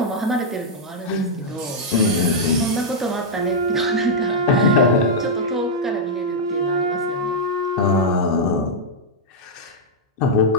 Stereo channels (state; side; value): normal; both; correlation -0.05